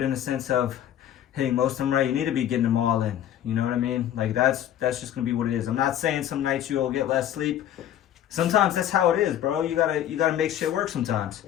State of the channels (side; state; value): right; quieter; 11.2 dB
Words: in the sense of hitting most of them right. You need to be getting them all in. You know what I mean? Like, that's just gonna be what it is. I'm not saying some nights you'll get less sleep. Sometimes that's how it is, bro. You gotta make shit work sometimes.